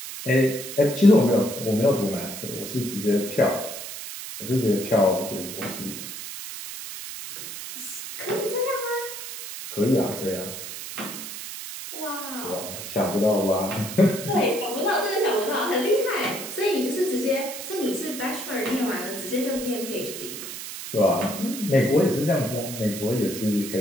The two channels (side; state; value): right; noise; hiss, 9 dB below the sound